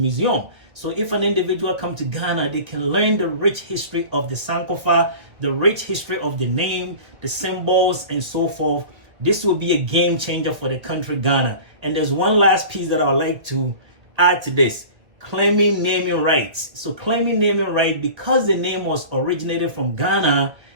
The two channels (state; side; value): late; left; 2.0 ms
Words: So if an individual come to Ghana, they can learn the rich history of the Sankofa, the rich history of the name, the symbols, and so forth. This will be a game changer for the country Ghana. And there's one last piece that I would like to add to this. Claiming naming rights. So claiming naming right, because the name was originated from Ghana,